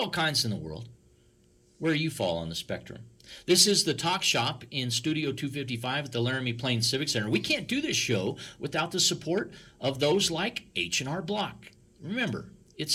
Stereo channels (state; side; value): identical; both; correlation 1.00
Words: kinds in the world. Where do you fall on the spectrum? This is the Talk Shop in Studio 255 at the Laramie Plains Civic Center. We can't do this show without the support of those like H&R Block. Remember,